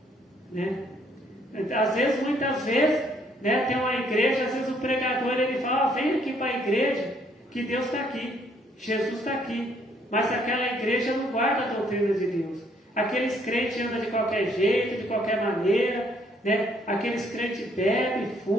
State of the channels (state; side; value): normal; both; correlation 0.67